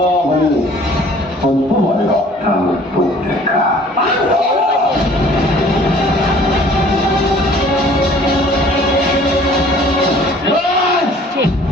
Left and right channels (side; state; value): both; normal; correlation 0.53